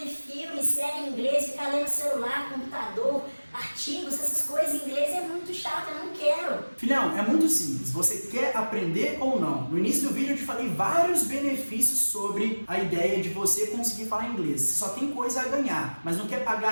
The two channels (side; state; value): both; inverted; correlation -1.00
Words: filme, série em inglês, ficar lendo celular, computador, artigos, essas coisas em inglês é muito chato, eu não quero. Filhão, é muito simples. Você quer aprender ou não? No início do vídeo eu te falei vários benefícios sobre a ideia de você conseguir falar inglês. Você só tem coisa a ganhar, mas não quer